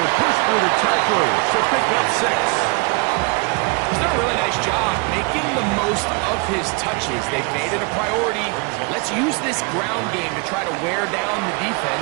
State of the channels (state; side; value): quieter; left; 31.2 dB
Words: to push through the tacklers to pick up 6. He's done a really nice job making the most of his touches. They've made it a priority. Let's use this ground game to try to wear down the